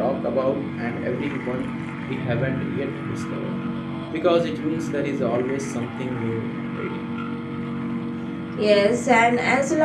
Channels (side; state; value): both; identical; correlation 1.00